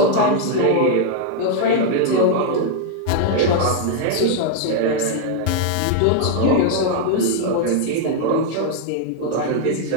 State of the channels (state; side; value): different; both; correlation 0.00